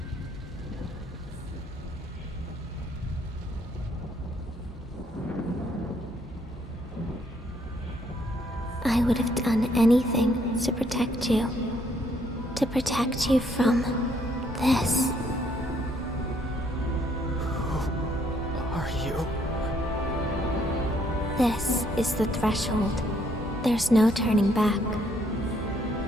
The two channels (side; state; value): both; normal; correlation 0.68